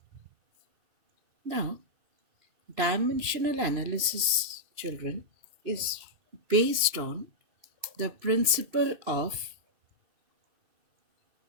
Now, dimensional analysis, children, is based on the principle of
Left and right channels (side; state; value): left; late; 2.9 ms